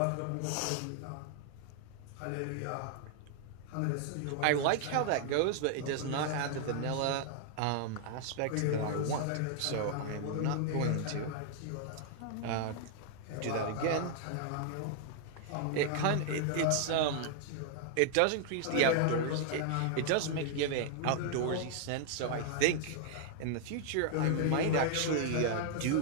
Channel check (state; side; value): different; both; correlation 0.00